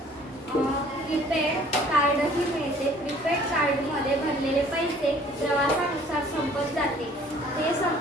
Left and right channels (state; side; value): normal; both; correlation 0.54